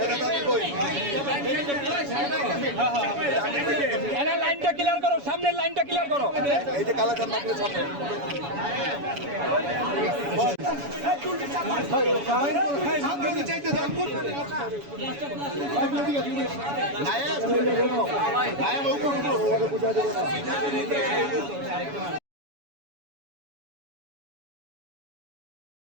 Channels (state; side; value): late; left; 7.1 ms